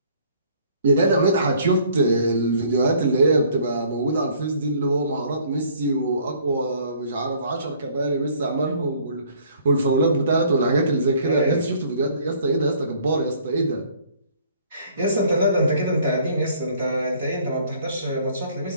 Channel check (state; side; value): inverted; both; correlation -0.58